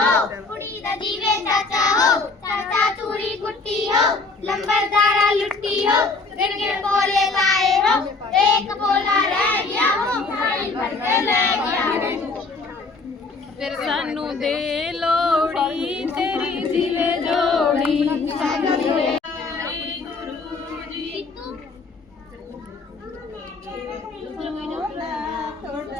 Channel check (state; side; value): quieter; right; 3.9 dB